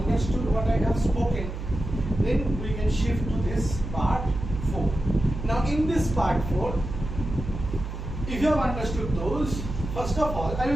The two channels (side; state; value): right; noise; hum, 7 dB below the sound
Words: what I have spoken, then we can shift to this part 4. Now in this part 4, if you have understood those, first of all, I